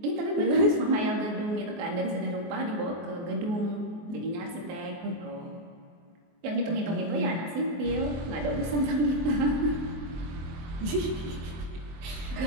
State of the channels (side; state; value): left; late; 23 ms